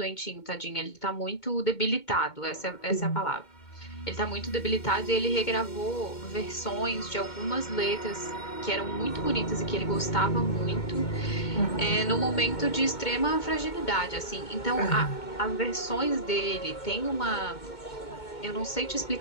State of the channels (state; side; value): late; right; 2.2 ms